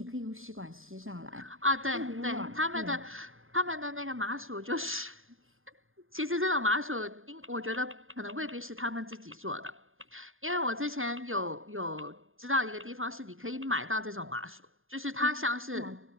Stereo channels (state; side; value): late; left; 0.59 ms